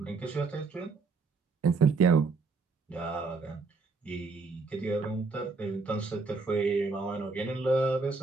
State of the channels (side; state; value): left; quieter; 4.2 dB